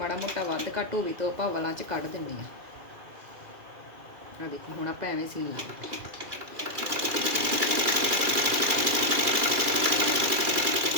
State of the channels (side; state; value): left; late; 2.4 ms